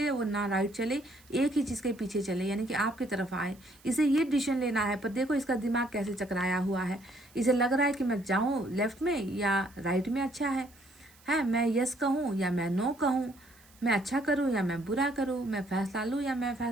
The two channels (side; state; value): right; noise; hiss, 27 dB below the sound